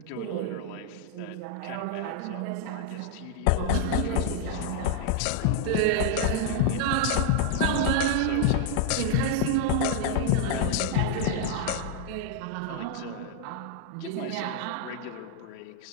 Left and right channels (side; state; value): both; different; correlation -0.01